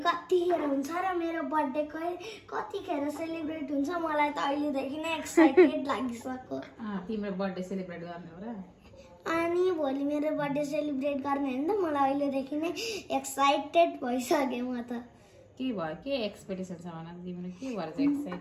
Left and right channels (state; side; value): identical; both; correlation 1.00